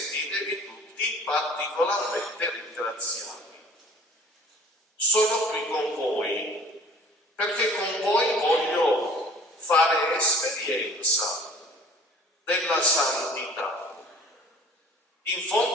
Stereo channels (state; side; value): normal; both; correlation 0.49